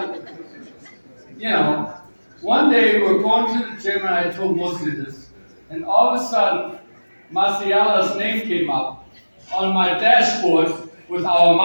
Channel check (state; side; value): inverted; both; correlation -1.00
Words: one day we were going to the gym, and I told Mosley this, and all of a sudden, Marciala's name came up on my dashboard with our